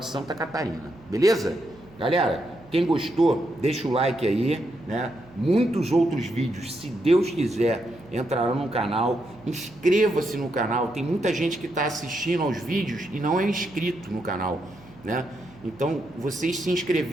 Santa Catarina, beleza? Galera, quem gostou, deixa o like aí, né? Muitos outros vídeos, se Deus quiser, entrarão no canal. Inscreva-se no canal, tem muita gente que está assistindo aos vídeos e não é inscrito no canal, né? Então, vocês se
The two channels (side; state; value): right; noise; hum, 23 dB below the sound